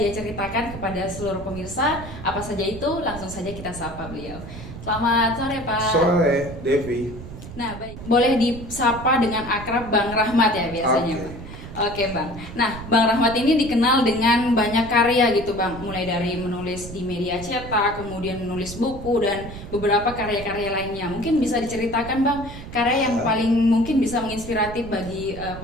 ceritakan kepada seluruh pemirsa. Apa saja itu? Langsung saja kita sapa beliau. Selamat sore, Pak. Sore, Devi. Nah, baik. Boleh disapa dengan akrab Bang Rahmat ya biasanya, Oke. Bang. Oke Bang, nah Bang Rahmat ini dikenal dengan banyak karya gitu Bang. Mulai dari menulis di media cetak, kemudian menulis buku dan beberapa karya-karya lainnya. Mungkin bisa diceritakan Bang, karya yang paling mungkin bisa menginspiratif bagi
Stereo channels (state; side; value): noise; right; rumble, 12 dB below the sound